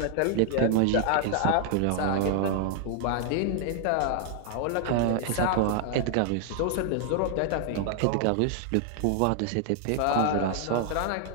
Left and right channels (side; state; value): both; different; correlation 0.00